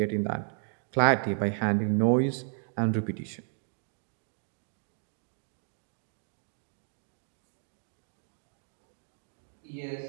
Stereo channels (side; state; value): left; silent; 56 dB below the other